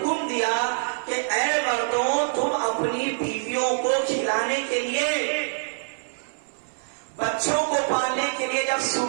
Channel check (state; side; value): silent; left; 62 dB below the other